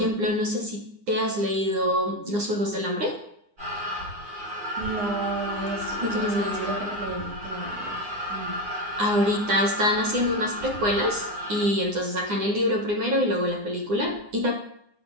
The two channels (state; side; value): late; left; 9.8 ms